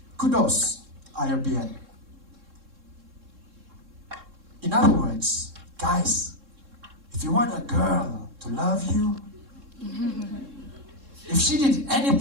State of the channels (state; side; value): late; left; 3.7 ms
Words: Kudos, IRBM. In other words, guys, if you want a girl to love you, if she did